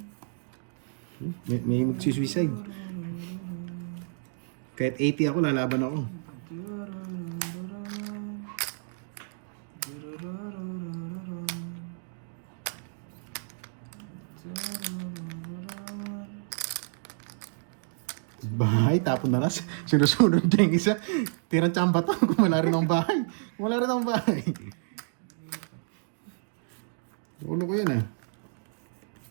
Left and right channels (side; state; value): left; silent; digital silence